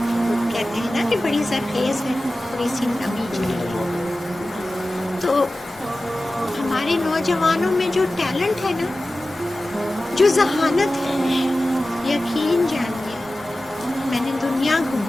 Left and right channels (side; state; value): both; normal; correlation 0.95